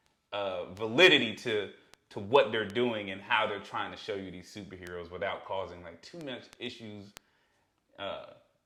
validity to what they're doing and how they're trying to show you these superheroes without causing, like, too much issues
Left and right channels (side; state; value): both; identical; correlation 1.00